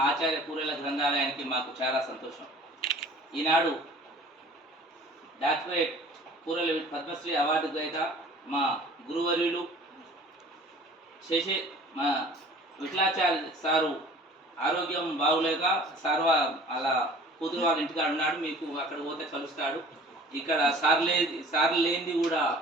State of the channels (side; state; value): both; normal; correlation 0.47